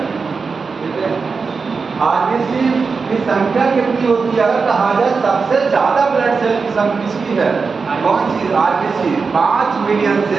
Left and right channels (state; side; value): quieter; left; 4.9 dB